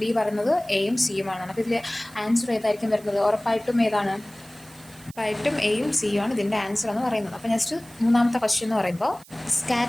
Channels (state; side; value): noise; right; hiss, 23 dB below the sound